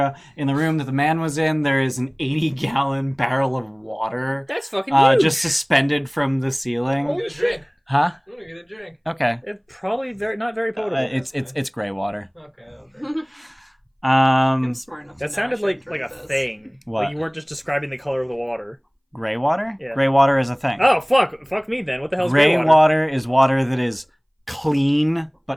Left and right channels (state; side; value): identical; both; correlation 1.00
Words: In the room that the man was in, there is an 80-gallon barrel of water That's fucking huge. just suspended from the ceiling. I'm gonna drink. Huh? I'm gonna get a drink. Okay. It's probably not very potable. It's gray water. Okay. I'm smart enough to That know sounded I like shouldn't a drink this. thing. What? Like you weren't just describing the color of the water. Gray water? Yeah. Gray water is a thing. Oh fuck me then. What the hell's Gray gray water? water is water that is clean